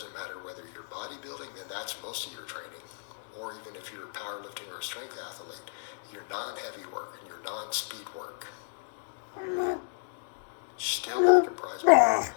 matter whether you're bodybuilding, then that's most of your training. Or even if you're powerlifting or a strength athlete, your non-heavy work and your non-speed work still comprise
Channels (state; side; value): silent; right; digital silence